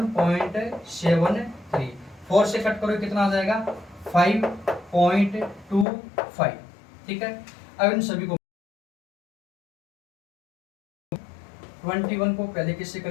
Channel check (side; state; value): right; drops out; at 5.9 s